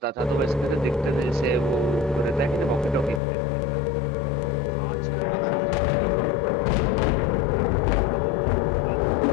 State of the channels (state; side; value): drops out; right; at 3.2 s